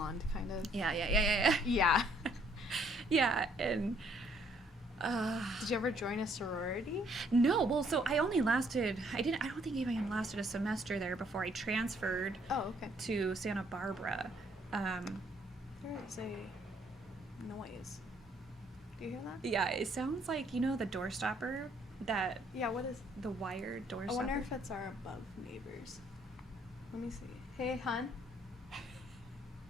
kind of. Yeah. Yeah. Yeah, and Did you ever join a sorority? No, well, so I only lasted, I don't think even lasted a semester there before I transferred Oh, okay. to Santa Barbara. There is a noise. Do you hear that? Yeah, it sounds like, the door stopper, that, Yeah, what is... the wired door I stopper. wonder if it's our above neighbors. Let me see. Hey, hon.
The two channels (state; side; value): normal; both; correlation 0.66